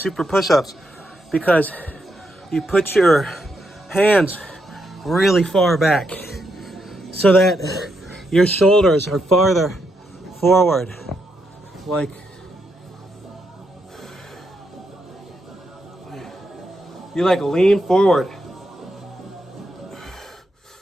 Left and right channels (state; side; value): normal; both; correlation 0.80